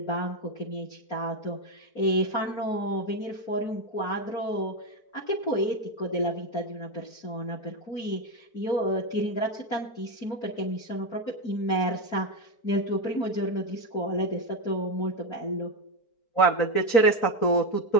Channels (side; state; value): right; late; 4.4 ms